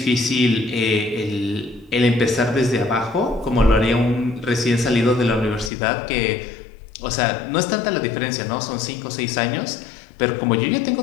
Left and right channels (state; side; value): drops out; right; at 5.7 s